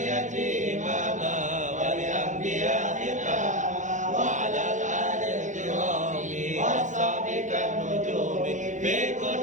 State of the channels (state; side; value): late; left; 0.36 ms